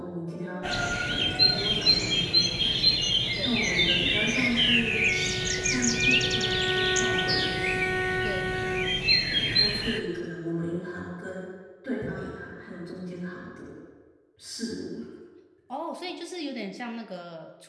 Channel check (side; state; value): both; identical; correlation 1.00